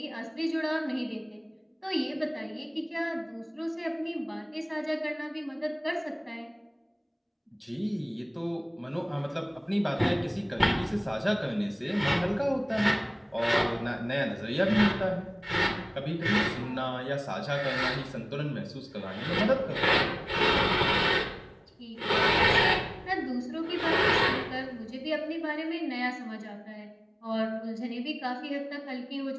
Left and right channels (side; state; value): both; identical; correlation 1.00